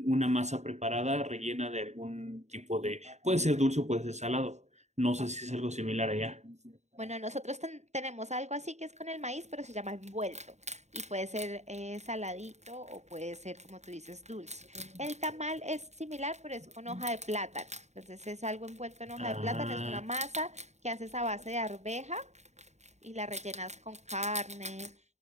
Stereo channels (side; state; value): left; late; 0.33 ms